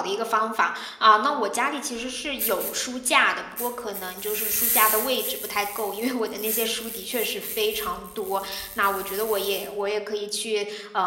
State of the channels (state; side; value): identical; both; correlation 1.00